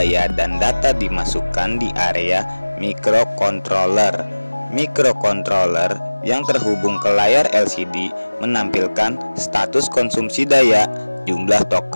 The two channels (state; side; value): inverted; both; correlation -1.00